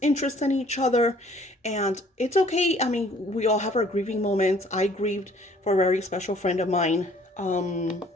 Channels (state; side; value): normal; both; correlation 0.57